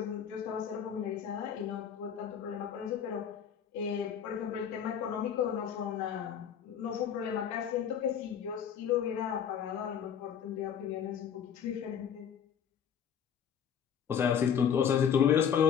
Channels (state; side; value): quieter; right; 8.2 dB